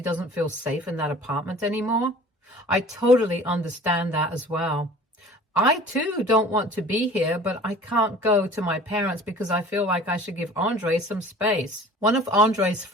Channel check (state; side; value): normal; both; correlation 0.45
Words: doesn't feel safe in that apartment anymore. I totally understand that as well. I too don't want to be here, but I can't go to my parents because I feel like I should give Andre some space. One of Andre's